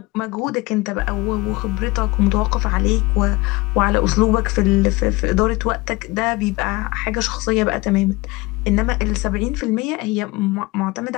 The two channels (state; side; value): quieter; right; 22.6 dB